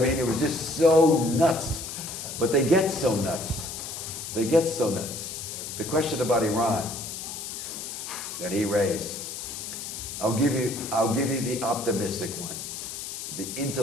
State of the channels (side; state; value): left; noise; hiss, 7 dB below the sound